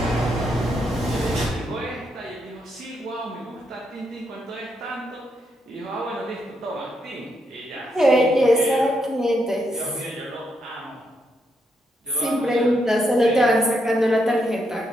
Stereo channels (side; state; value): both; normal; correlation 0.79